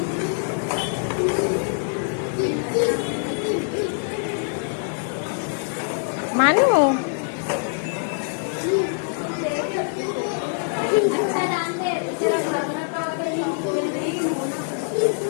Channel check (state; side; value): silent; right; 63 dB below the other